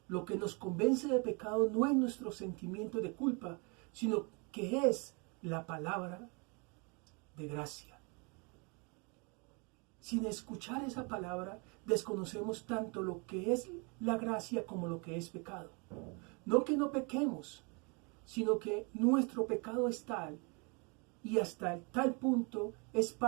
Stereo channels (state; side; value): quieter; left; 32.1 dB